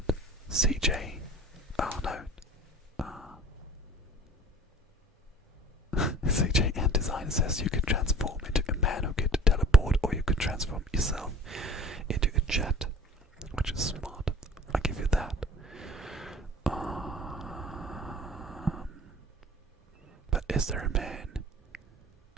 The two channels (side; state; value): both; normal; correlation 0.45